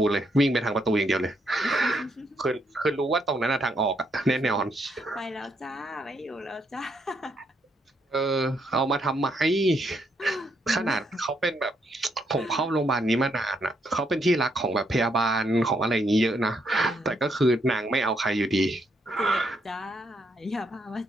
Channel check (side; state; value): both; normal; correlation 0.75